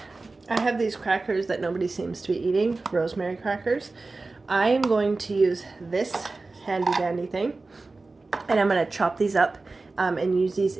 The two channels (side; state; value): left; quieter; 3.5 dB